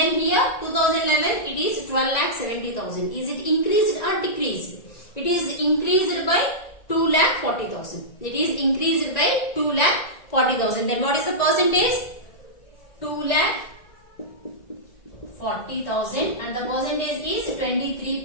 here 2011 it is 12 lakh 70,000. Is it increased or decreased? It is increased by 2 lakh 40,000. It is increased by 2 lakh 40,000. Then what is the percentage? 2 lakh 40,000 and the percentage is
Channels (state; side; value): late; right; 1.9 ms